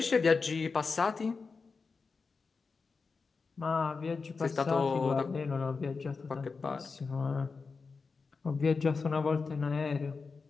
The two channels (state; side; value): quieter; right; 4.6 dB